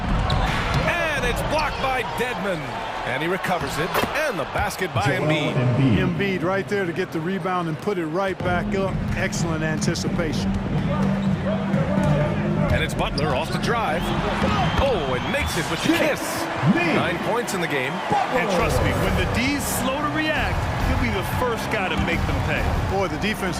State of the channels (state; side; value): identical; both; correlation 1.00